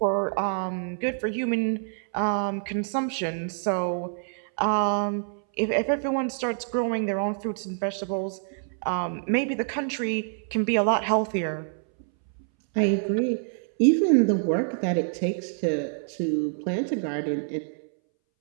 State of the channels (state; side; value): silent; left; 60 dB below the other